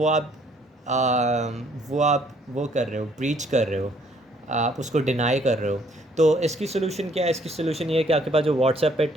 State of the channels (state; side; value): normal; both; correlation 0.64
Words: आप वो कर रहे हो, ब्रीच कर रहे हो, आप उसको डिनाई कर रहे हो। तो इसकी सोल्यूशन क्या है? इसकी सोल्यूशन ये है कि आपके पास जो व्हाट्सएप पे